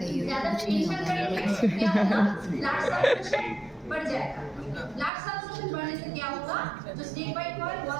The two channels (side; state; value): left; drops out; at 5.1 s